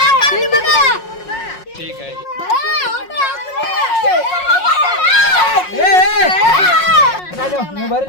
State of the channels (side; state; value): right; late; 5.5 ms